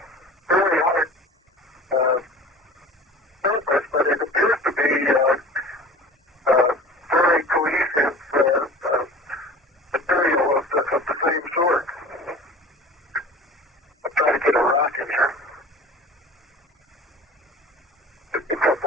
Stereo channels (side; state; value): both; normal; correlation 0.41